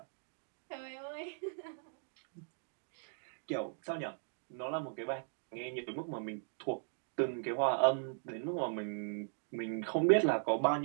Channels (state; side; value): silent; left; digital silence